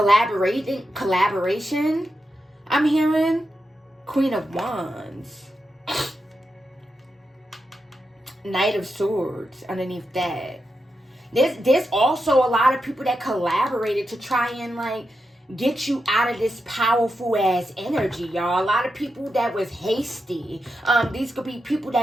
I'm hearing Queen of Wands. Knight of Swords underneath that. There's also a lot of people that collaborated to try and like get you out of this powerful ass energy, y'all. A lot of people that was hasty. These could be people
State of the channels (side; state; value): both; normal; correlation 0.87